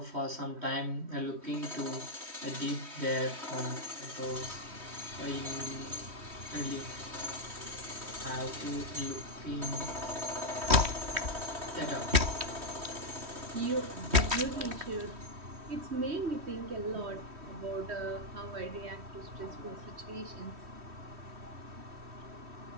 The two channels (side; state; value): left; late; 3.1 ms